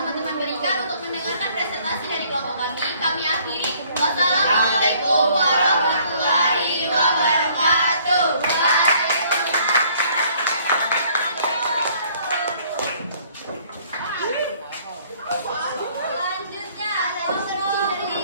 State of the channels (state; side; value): inverted; both; correlation -0.60